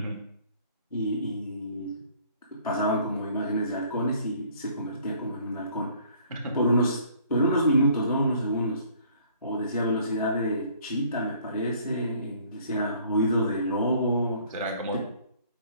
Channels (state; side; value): inverted; both; correlation -0.58